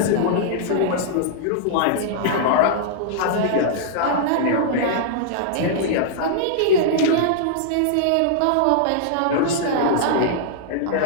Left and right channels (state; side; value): different; both; correlation -0.01